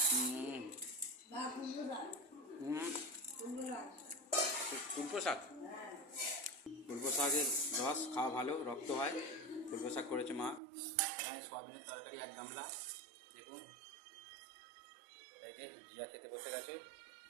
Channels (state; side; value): drops out; left; at 10.6 s